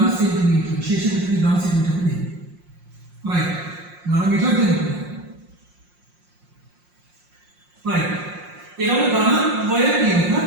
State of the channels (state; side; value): late; left; 5.6 ms